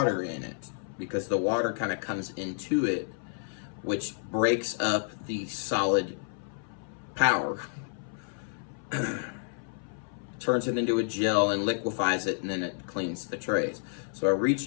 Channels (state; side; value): silent; right; 58 dB below the other